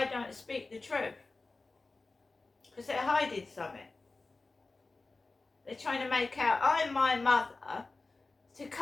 don't speak the truth. Because they're hiding something. They're trying to make out I'm my mother to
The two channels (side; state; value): right; quieter; 3.5 dB